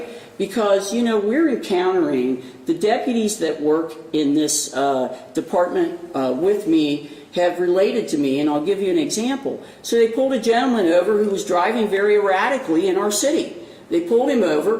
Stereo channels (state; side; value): identical; both; correlation 1.00